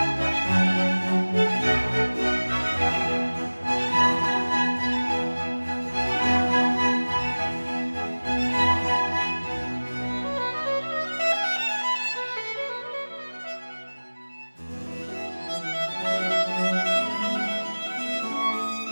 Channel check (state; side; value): inverted; both; correlation -1.00